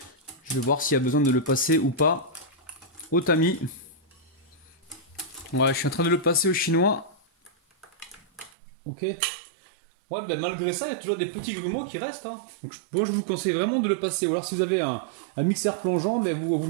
Je vais voir s'il y a besoin de le passer ou pas au tamis. Ouais, je suis en train de le passer au chinois. Ok. Ouais, ben malgré ça, il y a toujours des petits grumeaux qui restent. Hein. Donc, bon, je vous conseille vraiment de le passer. Ou alors, si vous avez un mixeur plongeant, ben vous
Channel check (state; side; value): drops out; left; at 8.5 s